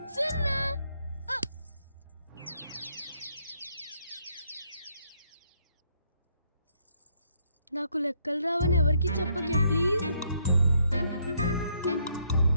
0. నాకు లెక్కలు రావని ఎవరికి చెప్పకే ప్లీజ్.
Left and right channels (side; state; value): both; inverted; correlation -0.72